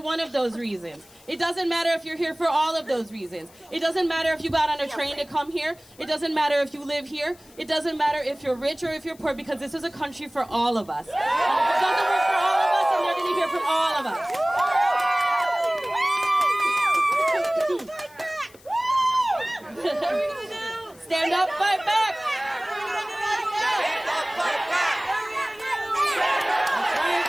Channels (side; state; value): left; noise; hiss, 26 dB below the sound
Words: one of those reasons. It doesn't matter if you're here for all of those reasons. It doesn't matter if you got on a train to come here. It doesn't matter if you live here. It doesn't matter if you're rich or if you're poor, because this is a country for all of us. And if it doesn't work for all of us, then they're going to hear from all of us. Stand up, fight back.